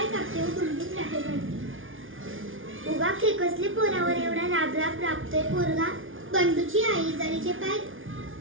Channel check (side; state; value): left; late; 0.58 ms